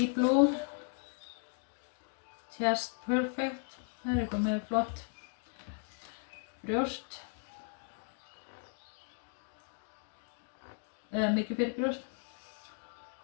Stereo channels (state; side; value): silent; right; 53 dB below the other